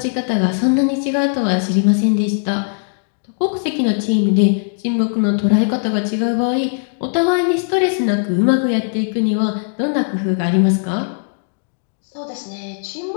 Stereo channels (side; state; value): right; silent; digital silence